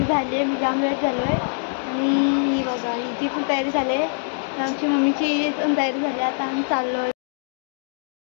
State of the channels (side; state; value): right; silent; digital silence